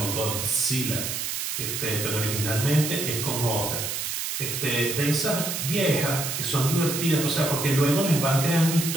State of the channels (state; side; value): noise; right; hiss, 3 dB below the sound